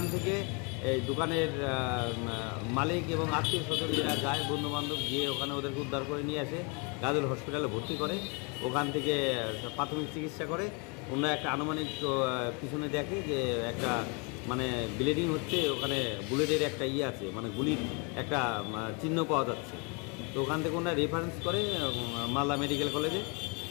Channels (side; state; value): right; quieter; 33.1 dB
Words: থেকে এই দোকানের মালিক এবং আত্মীয় স্বজন যারা যায়, বন্ধুবান্ধব, গিয়ে ওখানে ওদেরকে উদ্ধার করে নিয়ে আসে, গাজল হসপিটালে ভর্তি করে। ওখান থেকে প্রাথমিক চিকিৎসা করে। ওনারা একটা আনুমানিক পিছনে দেখে যে একটা মানে ব্লিডিং হচ্ছে, ওখানে বুলেটের একটা আছে, মানে গুলির একটা চিহ্ন পাওয়া যাচ্ছে। তো ওখান থেকে ওনারা রেফারেন্স করে মালদা মেডিকেল কলেজে।